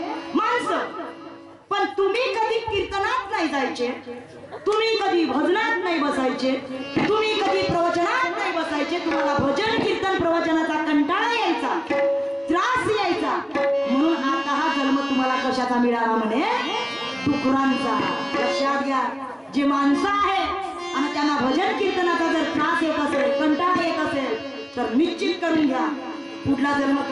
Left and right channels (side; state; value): both; identical; correlation 1.00